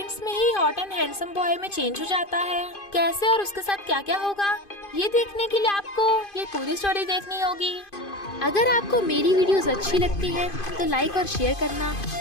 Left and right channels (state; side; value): late; right; 2.5 ms